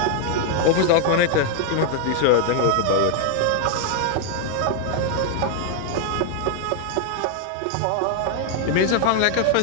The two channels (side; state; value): both; different; correlation 0.00